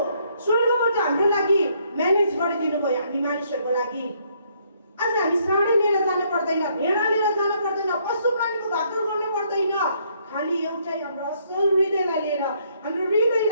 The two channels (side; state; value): both; inverted; correlation -0.69